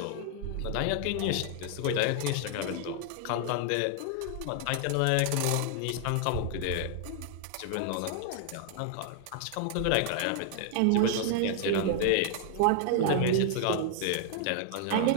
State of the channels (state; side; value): different; both; correlation 0.00